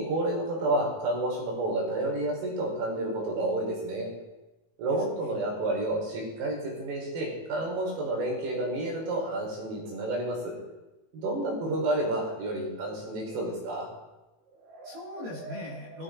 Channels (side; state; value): left; late; 18 ms